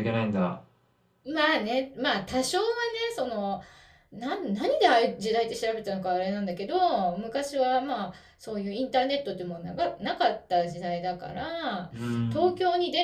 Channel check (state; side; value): identical; both; correlation 1.00